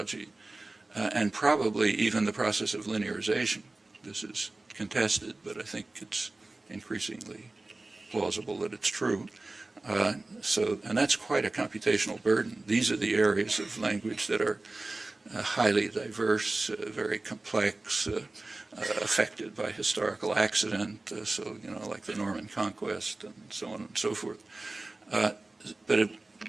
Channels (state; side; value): quieter; left; 3.1 dB